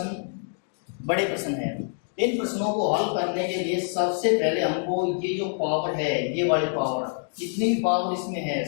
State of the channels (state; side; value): silent; right; digital silence